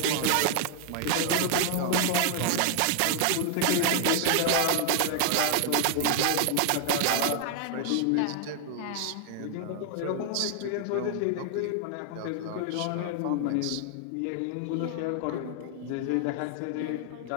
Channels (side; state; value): both; different; correlation 0.00